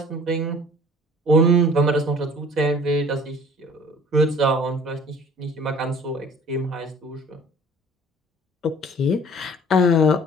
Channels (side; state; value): both; normal; correlation 0.50